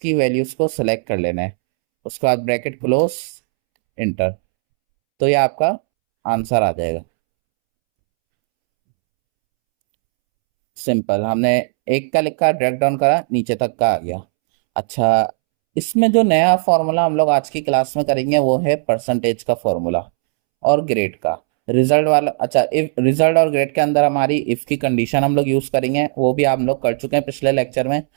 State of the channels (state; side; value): silent; left; 68 dB below the other